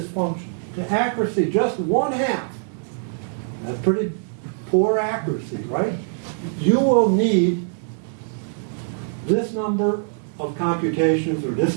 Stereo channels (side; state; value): left; silent; digital silence